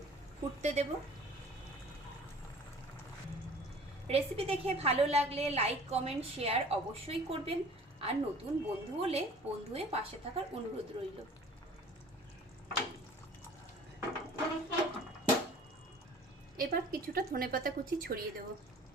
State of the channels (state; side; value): normal; both; correlation 0.47